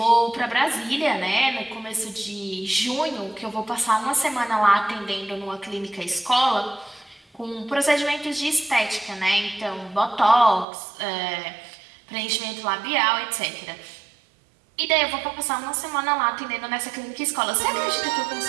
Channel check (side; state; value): left; drops out; at 10.7 s